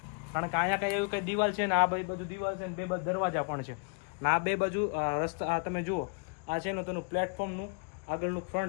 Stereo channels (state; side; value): quieter; right; 37.6 dB